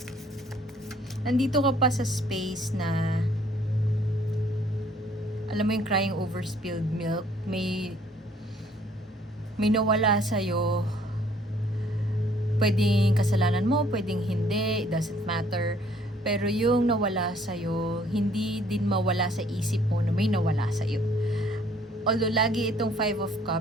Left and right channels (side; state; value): both; normal; correlation 0.61